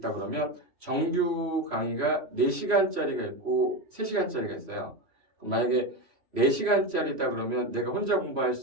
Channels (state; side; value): late; left; 3.1 ms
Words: 그러면 정규 강의가 4시간짜리가 있고 3시간짜리가 있어요. 만약에 4시간짜리다 그러면 내가 혼자 공부할